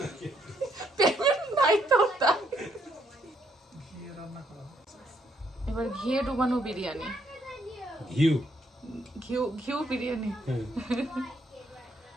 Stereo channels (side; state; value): both; normal; correlation 0.72